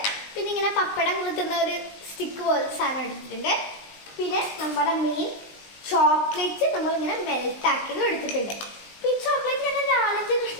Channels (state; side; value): late; right; 20 ms